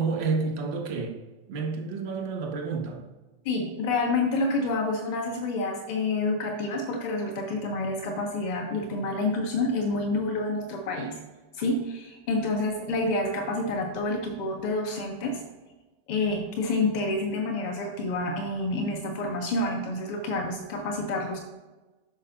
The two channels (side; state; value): right; late; 2.0 ms